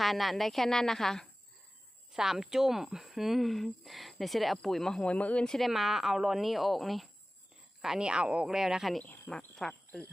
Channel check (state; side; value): normal; both; correlation 0.97